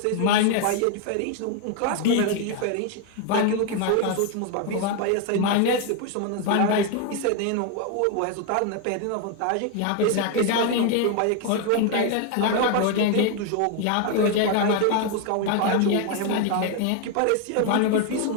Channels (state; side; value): different; both; correlation 0.01